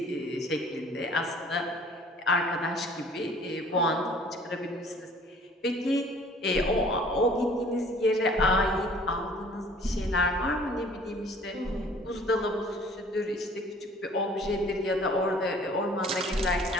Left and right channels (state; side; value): normal; both; correlation 0.53